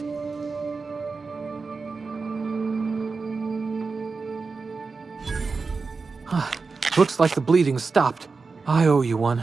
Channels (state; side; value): quieter; left; 4.4 dB